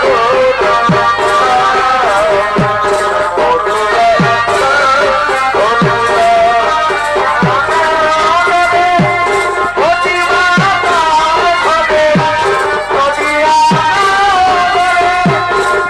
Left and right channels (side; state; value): left; noise; hum, 22 dB below the sound